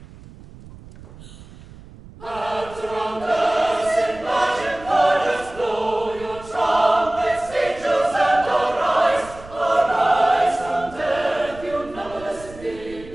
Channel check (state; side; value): noise; right; rumble, 18 dB below the sound